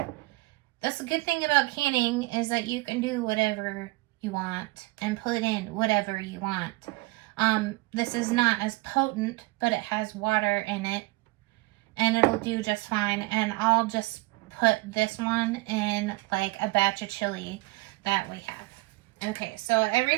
That's the good thing about canning, is that you can do whatever you want and put in whatever you want. This is not as potent, but it has water in it and it'll do just fine. And I'll just put this one in like a batch of chili that we have. Okay, so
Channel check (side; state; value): left; quieter; 23.5 dB